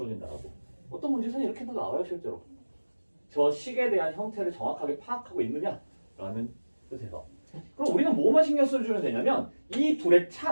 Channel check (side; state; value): both; inverted; correlation -1.00